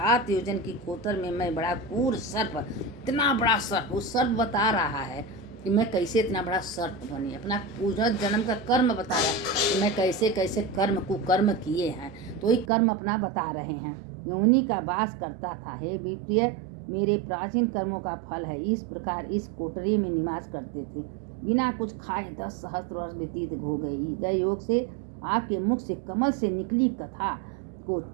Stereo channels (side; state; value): left; drops out; at 12.7 s